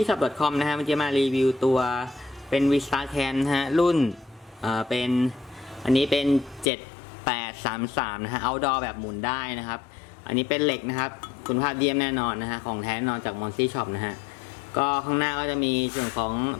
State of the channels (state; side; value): drops out; right; at 6.7 s